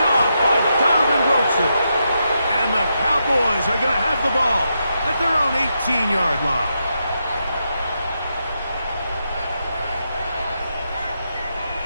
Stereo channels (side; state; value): both; inverted; correlation -0.83